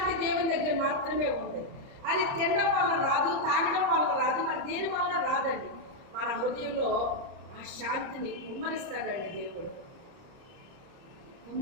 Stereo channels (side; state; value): left; late; 30 ms